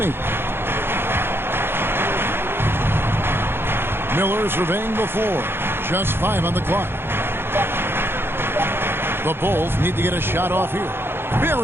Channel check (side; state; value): left; late; 0.11 ms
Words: Miller surveying the floor. Just 5 on the clock. The Bulls need to get a shot off here.